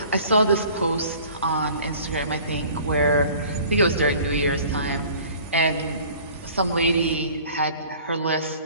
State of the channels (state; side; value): inverted; both; correlation -0.48